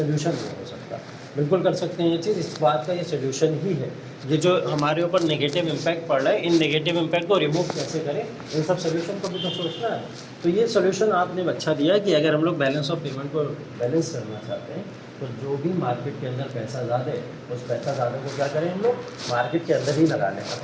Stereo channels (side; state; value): both; identical; correlation 1.00